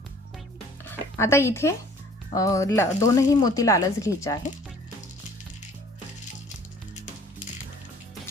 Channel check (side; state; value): both; normal; correlation 0.54